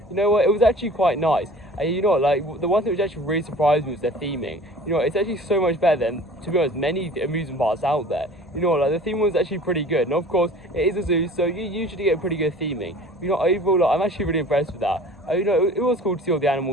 you know what, it was actually quite nice. And you know what, like, the one thing which actually really surprised me was their theming. You know, it's actually so much better than, to be honest, many amusement parks out there. You know, like, the theme was actually pretty good. And of course, it is a zoo, so you usually get pretty good theming. You know, overall, like, I'm actually really impressed with that. You know, it was cool to see all the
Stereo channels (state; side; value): normal; both; correlation 0.45